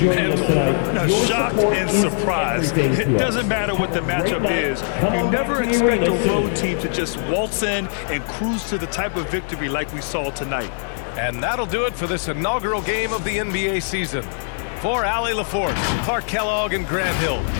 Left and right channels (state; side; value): silent; right; digital silence